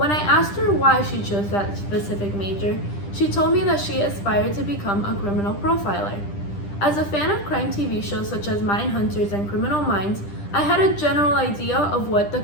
I asked her why she chose that specific major, she told me that she aspired to become a criminal profiler. As a fan of crime TV shows such as Mindhunters and Criminal Minds, I had a general idea of what the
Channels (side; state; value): right; late; 10 ms